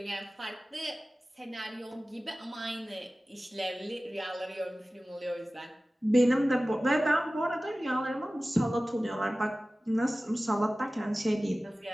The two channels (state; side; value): normal; both; correlation 0.97